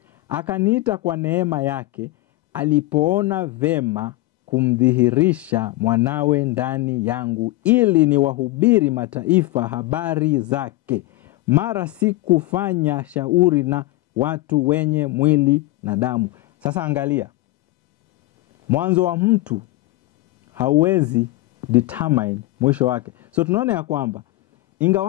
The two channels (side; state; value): right; quieter; 18.6 dB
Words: akaniita kwa neema yake, alipoona vema kumdhihirisha mwanawe ndani yangu, ili niwahubiri mataifa habari zake. Mara sikufanya shauri na watu wenye mwili na damu. Sasa angalia, mwanzo wa mtu hauwezi determine mwisho wake. So tunaona ya kwamba